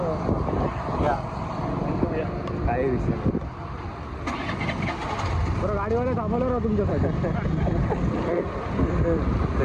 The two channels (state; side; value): identical; both; correlation 1.00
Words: या काय विषय नाही. बरं गाडीवाला थांबवलं ना तुमच्यासाठी. ते